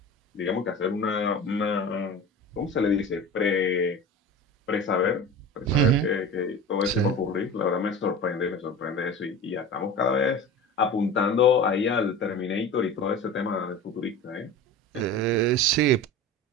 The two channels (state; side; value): normal; both; correlation 0.33